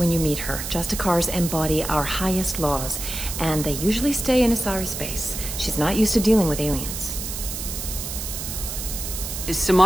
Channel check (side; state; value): right; noise; hiss, 6 dB below the sound